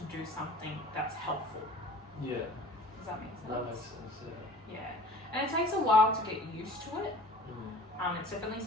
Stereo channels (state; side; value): normal; both; correlation 0.45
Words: do something that's helpful. Yeah. Does that make sense? That makes sense. Yeah. Yeah. And it takes a while to get used to it. Mm. It's definitely